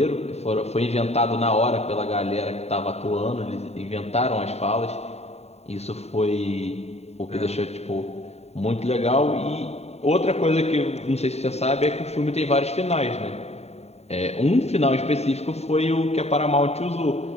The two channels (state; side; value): late; right; 0.31 ms